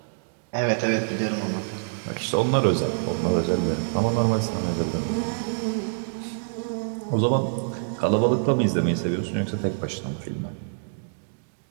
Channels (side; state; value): left; silent; digital silence